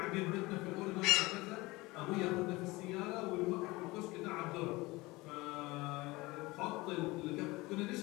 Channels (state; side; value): quieter; right; 21.8 dB